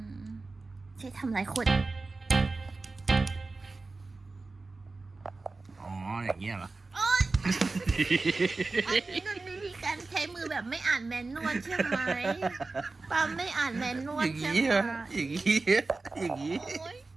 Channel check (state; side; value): quieter; left; 3.6 dB